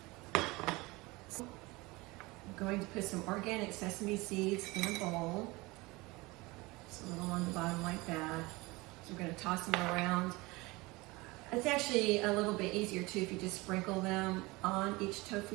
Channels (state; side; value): quieter; left; 23.1 dB